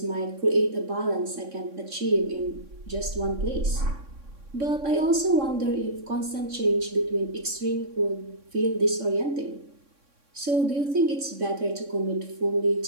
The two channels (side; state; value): left; late; 3.6 ms